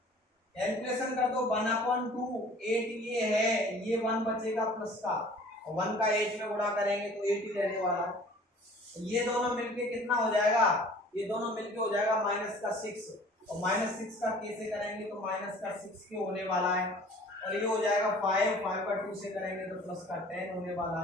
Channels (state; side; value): normal; both; correlation 0.49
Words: कैलकुलेशन कर दो, 1/2 8 ये है, ये 1 बचेगा प्लस का, और 1 का 8 में गुणा करेंगे तो 8 ही रहने वाला है। ये दोनों मिलके कितना हो जाएगा, ये दोनों मिलके हो जाएगा -6, और -6 का कैसे करेंगे तो -6 के होने वाला है, और ये हो जाएगा 5 का 2 से करेंगे तो +10 होने वाला